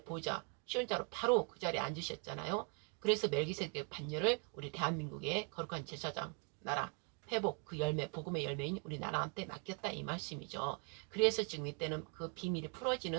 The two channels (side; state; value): left; quieter; 35.5 dB